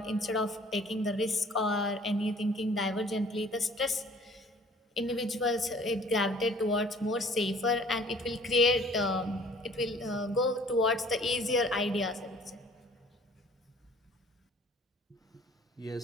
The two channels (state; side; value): normal; both; correlation 0.53